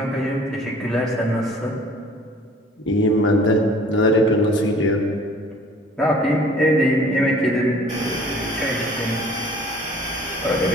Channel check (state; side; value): normal; both; correlation 0.51